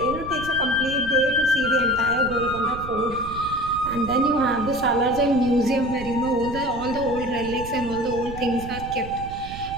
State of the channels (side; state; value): right; noise; rumble, 12 dB below the sound